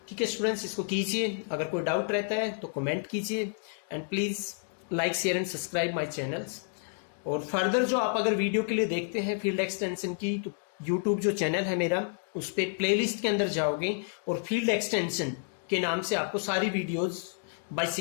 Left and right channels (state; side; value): silent; right; digital silence